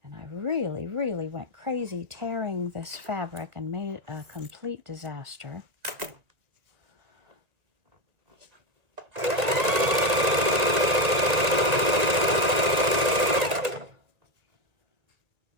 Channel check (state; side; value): late; left; 2.0 ms